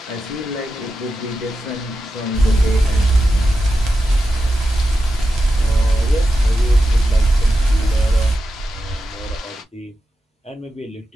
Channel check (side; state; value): both; normal; correlation 0.90